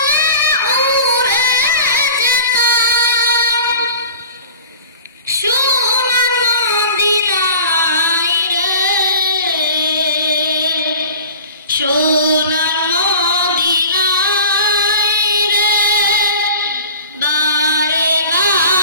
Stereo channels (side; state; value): both; inverted; correlation -0.41